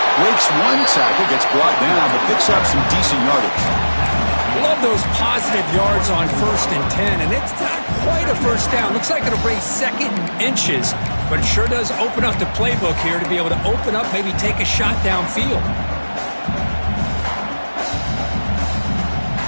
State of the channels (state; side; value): inverted; both; correlation -1.00